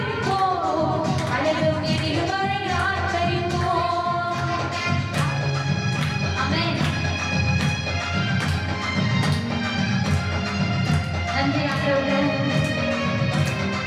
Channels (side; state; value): both; identical; correlation 1.00